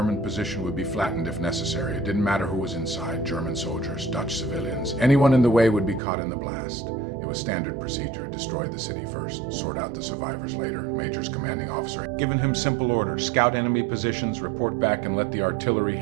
position would be flattened if necessary. It didn't matter who was inside, German soldiers, Dutch civilians. Anyone in the way would be caught in the blast. It was standard procedure: destroy the city first, sort out the survivors later. Major's commanding officer given him simple orders: scout enemy positions, report back, and let the artillery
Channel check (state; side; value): drops out; left; at 6.0 s